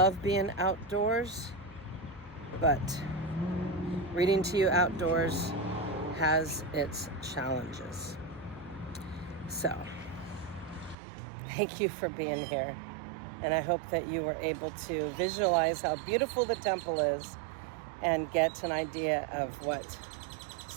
being outdoors, but reading to you outdoors has its challenges. So, thank you for being here. And I hope that you were able to visualize how beautiful the temple is and get an idea of what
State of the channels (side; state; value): left; drops out; at 11.0 s